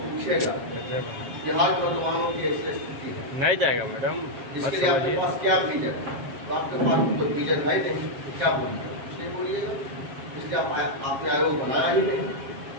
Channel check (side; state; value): left; late; 7.4 ms